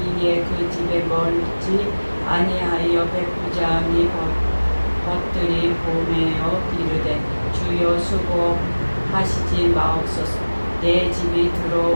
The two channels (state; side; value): inverted; both; correlation -1.00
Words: 그 집에 멀지 아니하여 백부장이 벗들이 보내어 이르되 주여 수고하시지 마옵소서. 내 집이